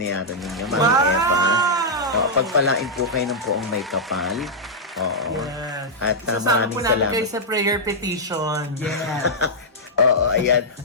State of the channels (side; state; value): both; normal; correlation -0.08